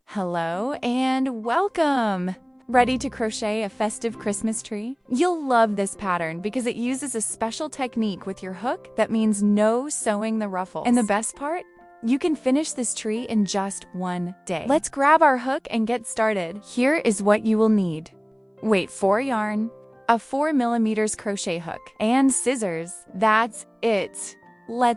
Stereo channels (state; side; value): identical; both; correlation 1.00